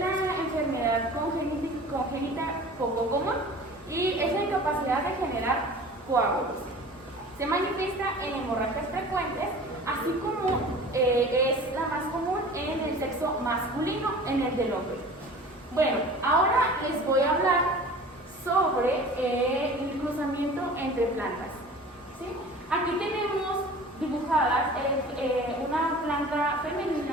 enfermedad congénita poco común y es la incapacidad de generar coágulos. Se manifiesta en hemorragias frecuentes, así como es la más común en el sexo masculino, en el del hombre. Bueno, ahora les voy a hablar sobre el cruzamiento entre plantas. ¿Sí? Aquí tenemos dibujadas una planta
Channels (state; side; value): normal; both; correlation 0.41